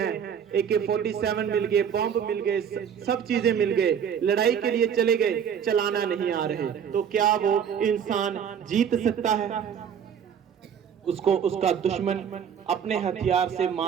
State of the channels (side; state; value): left; quieter; 7.9 dB